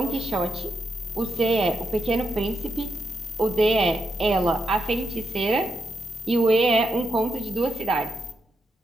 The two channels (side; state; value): both; normal; correlation 0.84